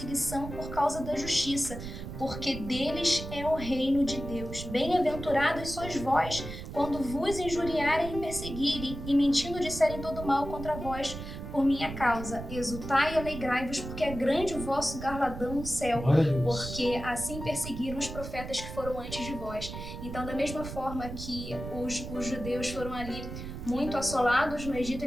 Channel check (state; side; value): noise; right; rumble, 9 dB below the sound